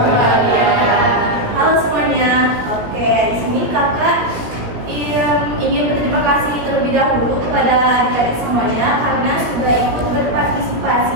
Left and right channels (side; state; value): left; late; 17 ms